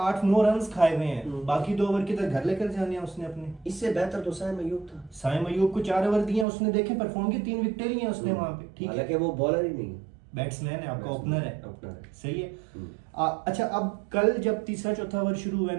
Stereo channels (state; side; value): drops out; left; at 6.5 s